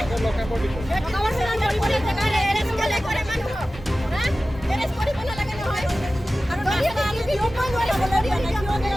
এৰেষ্ট কৰে মানুহক এৰেষ্ট কৰিব নালাগে নহয় আৰু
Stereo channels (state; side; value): normal; both; correlation 0.95